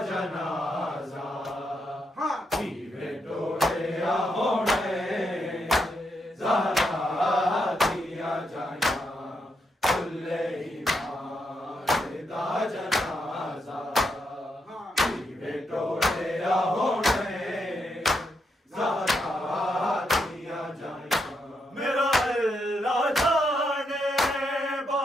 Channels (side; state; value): both; normal; correlation 0.81